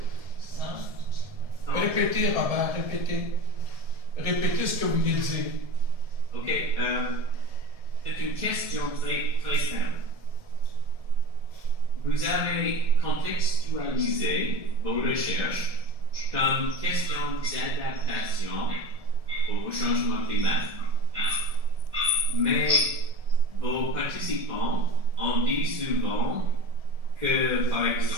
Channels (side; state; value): left; late; 1.7 ms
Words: Répétez, Robert, répétez. Répétez ce que vous venez de dire. OK. C'est une question très simple. Vous avez contextualisé vos recherches comme question d'adaptation au changement climatique. Mais vos participants ont dit souvent que, par